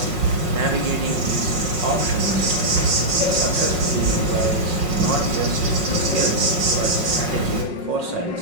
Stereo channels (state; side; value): late; left; 5.5 ms